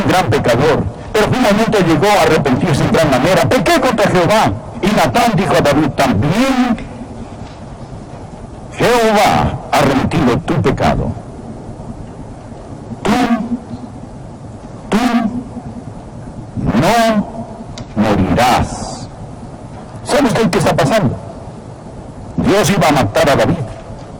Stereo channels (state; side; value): identical; both; correlation 1.00